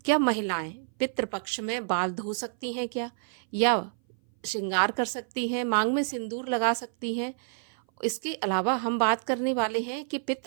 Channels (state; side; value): silent; left; 57 dB below the other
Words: क्या महिलाएं पितृपक्ष में बाल धो सकती हैं क्या, या श्रृंगार कर सकती हैं, मांग में सिंदूर लगा सकती हैं। इसके अलावा हम बात करने वाले हैं कि